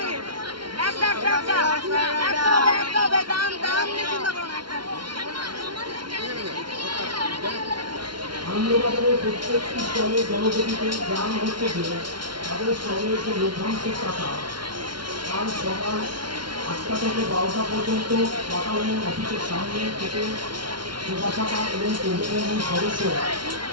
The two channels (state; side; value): late; left; 0.72 ms